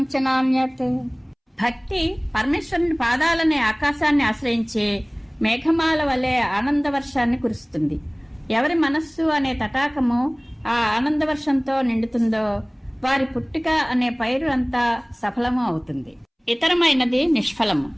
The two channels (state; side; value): identical; both; correlation 1.00